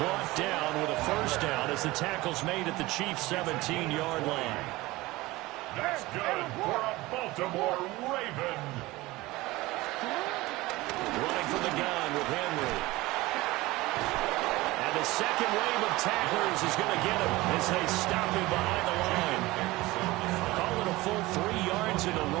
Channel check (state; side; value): quieter; left; 19.9 dB